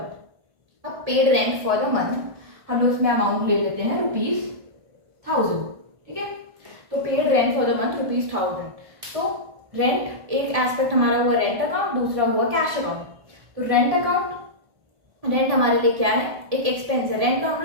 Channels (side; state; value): left; late; 1.7 ms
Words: अब paid rent for the month हम लोग उसमें अमाउंट ले लेते हैं ₹1000, ठीक है। तो paid rent for the month ₹1000। तो रेंट एक एस्पेक्ट हमारा हुआ रेंट अकाउंट, दूसरा हुआ कैश अकाउंट। तो रेंट अकाउंट, रेंट हमारे लिए क्या है, एक एक्सपेंस है, रेंट का हम